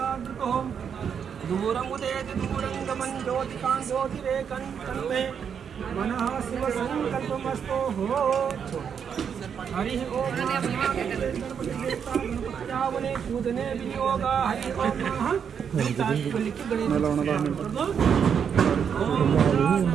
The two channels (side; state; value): left; quieter; 7.4 dB